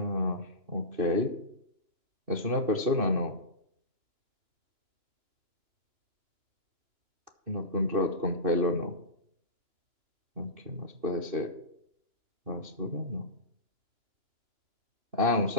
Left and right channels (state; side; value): late; left; 2.6 ms